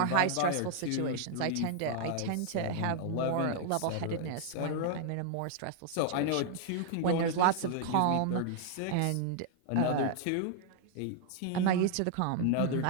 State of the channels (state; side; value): different; both; correlation 0.00